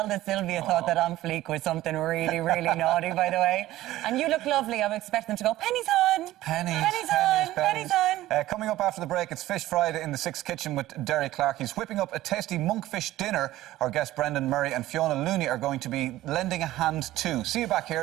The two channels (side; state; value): left; quieter; 15.5 dB